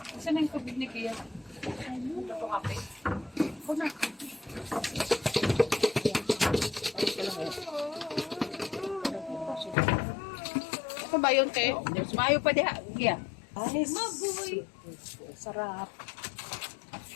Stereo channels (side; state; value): right; drops out; at 9.8 s